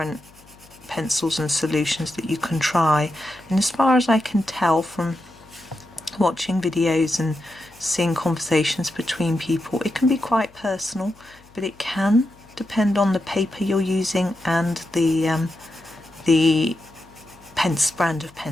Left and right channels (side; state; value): left; noise; hum, 27 dB below the sound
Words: pencils and solutions that you can try, and as far as I can tell from watching videos and seeing conversations between people, it can be quite personal, but it can depend on the paper you're using and the brand of